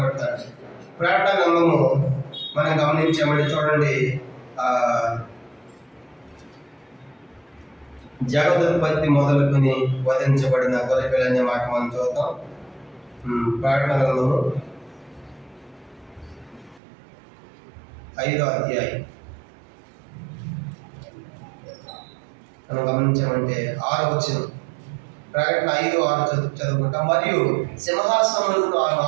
ప్రకటన గ్రంథము మనం గమనించామంటే చూడండి, జగదుత్పత్తి మొదలుకొని వధించబడిన గొర్రె పిల్ల అనే మాట మనం చూద్దాం. ప్రకటన గ్రంథము 5వ అధ్యాయం మనం గమనించామంటే 6వ వచనం. ప్రకటన 5:6 చదువుకుంటాం. మరియు సింహాసనములకు ఆ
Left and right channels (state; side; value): drops out; left; at 16.8 s